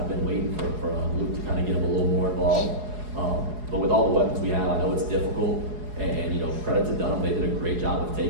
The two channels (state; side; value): late; left; 4.8 ms